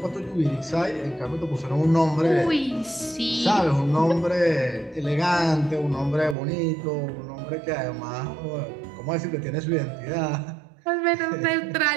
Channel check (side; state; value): left; drops out; at 6.4 s